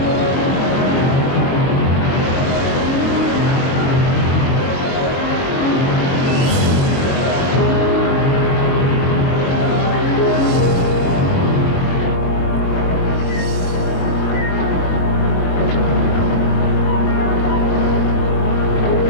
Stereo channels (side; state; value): right; late; 8.0 ms